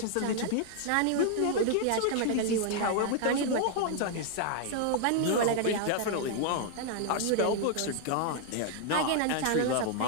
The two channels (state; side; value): different; both; correlation 0.00